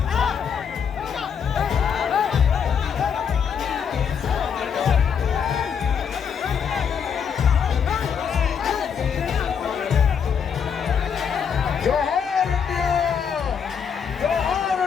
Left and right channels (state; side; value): quieter; right; 7.1 dB